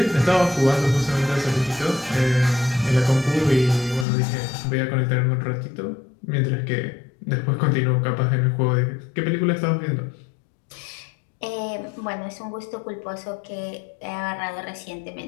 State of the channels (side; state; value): right; drops out; at 4.0 s